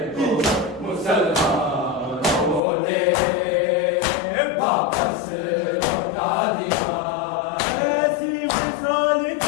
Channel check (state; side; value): drops out; right; at 2.6 s